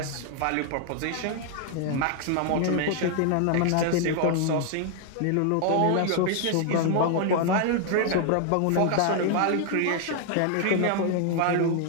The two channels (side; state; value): both; different; correlation 0.00